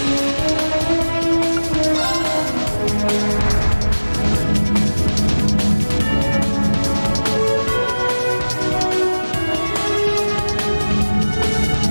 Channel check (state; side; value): inverted; both; correlation -1.00